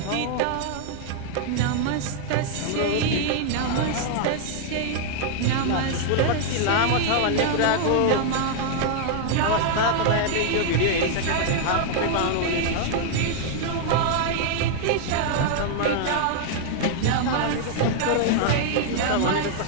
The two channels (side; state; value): both; different; correlation 0.00